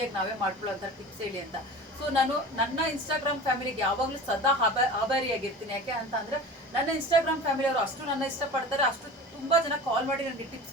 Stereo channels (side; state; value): both; normal; correlation 0.36